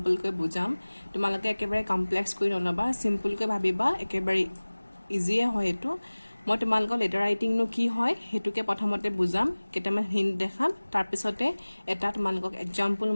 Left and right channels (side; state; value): both; inverted; correlation -1.00